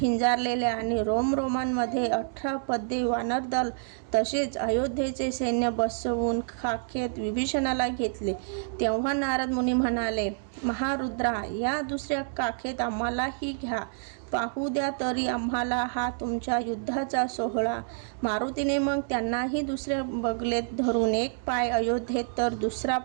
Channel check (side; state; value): left; silent; digital silence